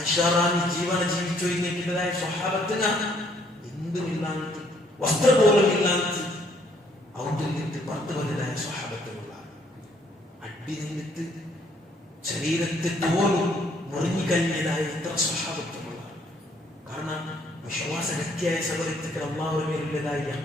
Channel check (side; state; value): both; normal; correlation 0.66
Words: ജീവന ജീവിച്ചു കഴിഞ്ഞിട്ടതായ സ്വഹാബത്തിന് എന്തുമില്ലാത്ത വസ്ത്രം പോലും ഇല്ലാത്ത ഔട്ടിൽ നിന്ന് പുറത്തു വന്നതായ സ്വഹാബത്തുകളാണ്. അടി നിന്നിട്ട് ശരീരത്തെ പോലും മുറിഞ്ഞുകഴിഞ്ഞതായ എത്ര സ്വഹാബത്തുകളാണ്. കാരണം വിശ്വാസഗത്യായ സബലത്തിൽ അള്ളാഹുവിന്റെ മേലുള്ളതായ